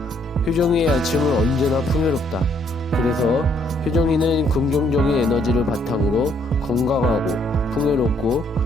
효정이의 아침은 언제나 풍요롭다. 그래서 효정이는 긍정적인 에너지를 바탕으로 건강하고 풍요롭고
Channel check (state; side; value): normal; both; correlation 0.68